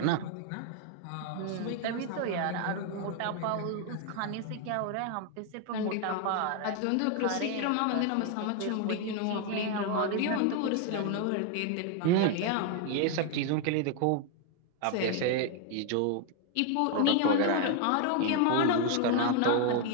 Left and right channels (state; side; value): different; both; correlation 0.00